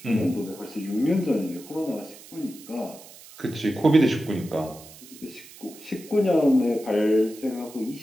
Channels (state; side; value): noise; right; hiss, 19 dB below the sound